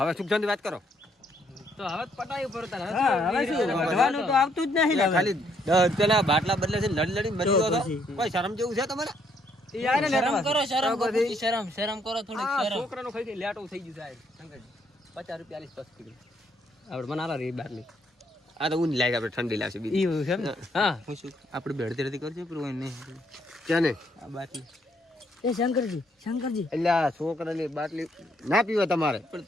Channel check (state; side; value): normal; both; correlation 0.70